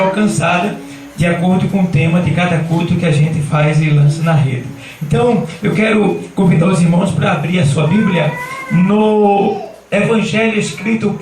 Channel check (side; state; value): both; identical; correlation 1.00